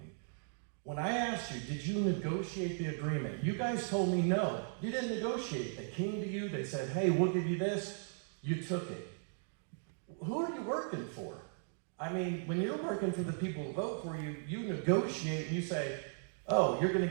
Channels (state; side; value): silent; left; digital silence